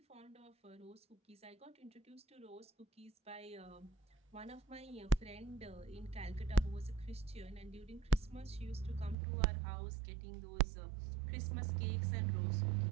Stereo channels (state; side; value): drops out; left; at 9.2 s